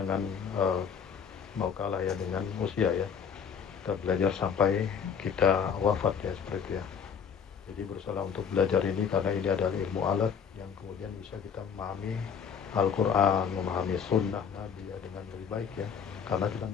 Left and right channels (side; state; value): right; quieter; 7.0 dB